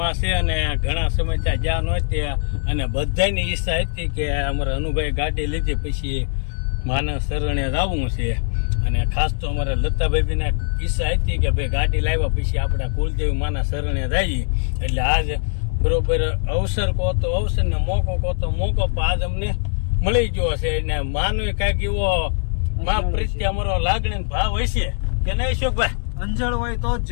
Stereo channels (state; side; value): silent; right; digital silence